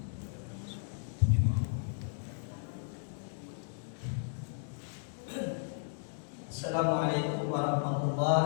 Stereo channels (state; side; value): silent; right; digital silence